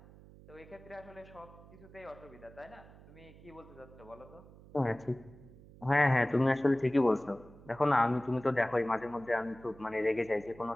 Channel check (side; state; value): right; noise; hum, 21 dB below the sound